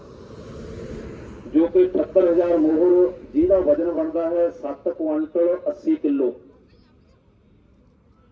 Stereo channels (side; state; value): both; identical; correlation 1.00